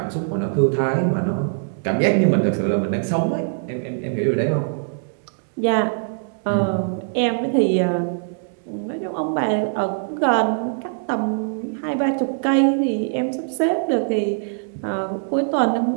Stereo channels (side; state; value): left; silent; digital silence